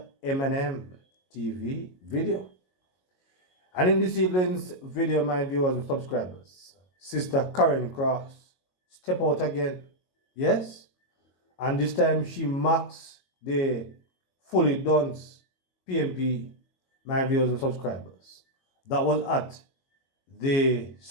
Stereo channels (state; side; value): late; right; 22 ms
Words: M&M TV video. And in this evening's video, my viewers and subscribers, Sister Karen Cross step out again. Yes? And this time she marks the fully dunce PNP, my viewers and subscribers. That was at the